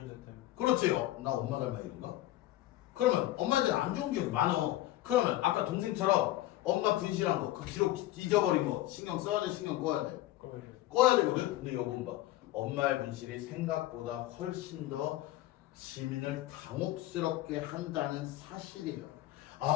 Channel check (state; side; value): quieter; right; 15.5 dB